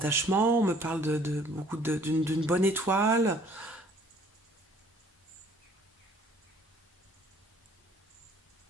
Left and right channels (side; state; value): both; normal; correlation 0.57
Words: on me parle d'une bonne étoile.